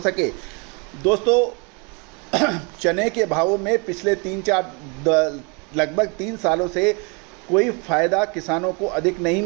सके। दोस्तों, चने के भावों में पिछले लगभग 3 सालों से कोई फ़ायदा किसानों को अधिक नहीं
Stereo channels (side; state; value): left; quieter; 32.3 dB